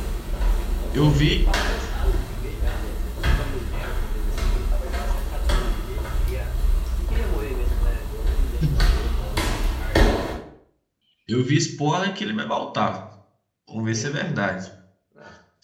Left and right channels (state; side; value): identical; both; correlation 1.00